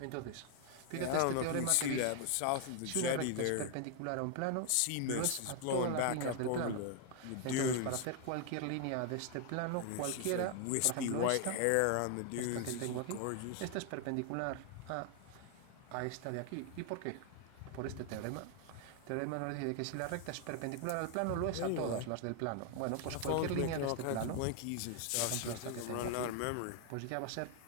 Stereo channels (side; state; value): both; different; correlation 0.00